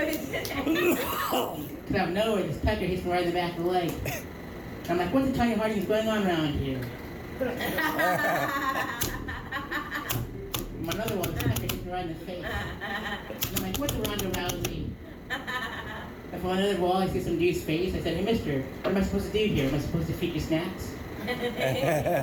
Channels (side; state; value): both; identical; correlation 1.00